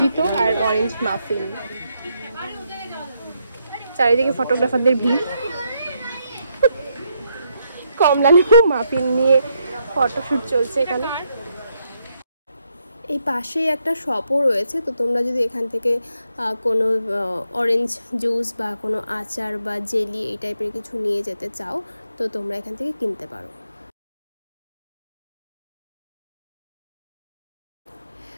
আর অরেঞ্জ মাফিন। চারিদিকে ফটোগ্রাফারদের ভিড়, কমলা লেবু মাফিন নিয়ে ফটোশ্যুট চলছে এখানে। এই পাশেই একটা শপও রয়েছে, তো তোমরা যদি এখান থেকে কোনো অরেঞ্জ জুস বা কোনো আচার বা জেলি এই টাইপের কিছু নিয়ে যেতে চাও তো তোমরা এখান থেকে কিনতে পারো।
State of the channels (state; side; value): inverted; both; correlation -0.78